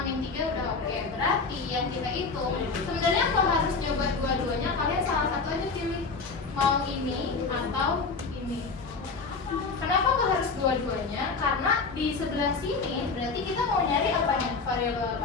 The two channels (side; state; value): right; quieter; 4.5 dB